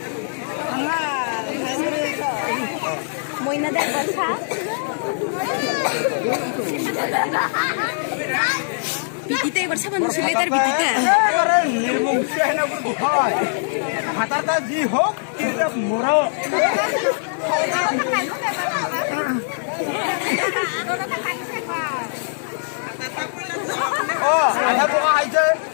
Muy nada de bolsa. Bitita এবার সাবান ছিলে তার bitita. আরে নির্মমসে না করে হয় হাতাটা জি হোক এটা মোরা ও আধা পোকা আইছে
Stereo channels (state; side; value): silent; right; digital silence